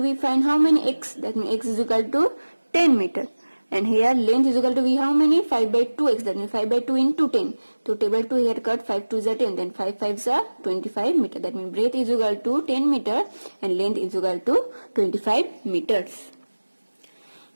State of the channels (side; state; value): both; inverted; correlation -1.00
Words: find how many x? That means x is equal to 10 meter. And here length is equal to, we how many? 5 by 2x. That means 5 by 2 into 10. So table 2 here cut, 5 2s are 10. Then 5 5s are 25 meter. That means breadth is equal to 10 meter and length is equal to 25 meters.